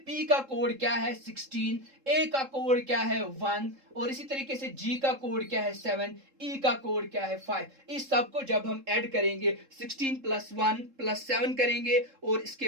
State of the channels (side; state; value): left; late; 3.7 ms